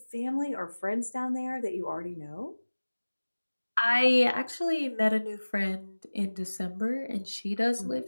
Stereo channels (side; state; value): both; inverted; correlation -1.00